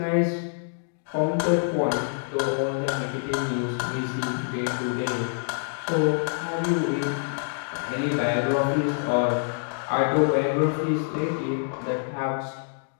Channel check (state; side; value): silent; right; 61 dB below the other